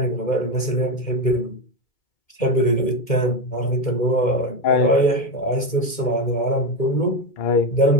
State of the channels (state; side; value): late; right; 2.1 ms